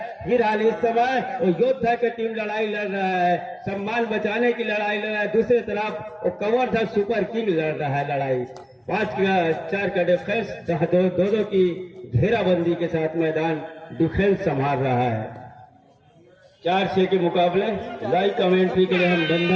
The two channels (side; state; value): both; identical; correlation 1.00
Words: फिलहाल इस समय वो योद्धा की टीम लड़ाई लड़ रहा है, सम्मान बचाने की लड़ाई लड़ रहा है। दूसरी तरफ वो कवर्धा सुपर किंग लड़ रहा है लड़ाई। 5-4 का डिफेंस, जहाँ 2-2 की घेराबंदी के साथ मैदान डिफेंस संभाल रहा है। 4-6 के मुकाबले लाइव कमेंट्री के लिए हम